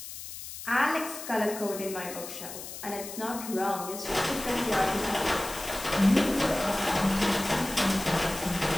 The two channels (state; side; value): noise; left; hiss, 11 dB below the sound